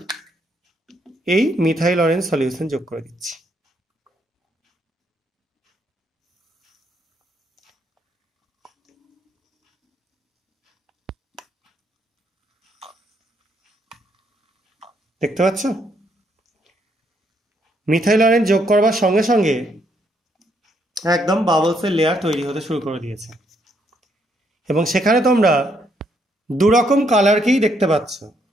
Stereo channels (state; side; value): normal; both; correlation 0.73